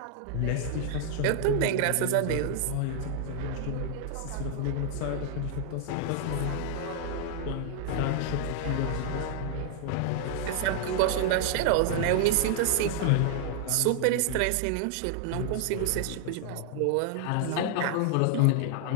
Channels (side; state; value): both; different; correlation 0.00